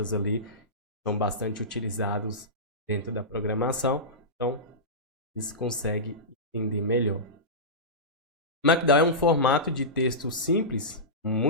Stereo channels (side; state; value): both; normal; correlation -0.16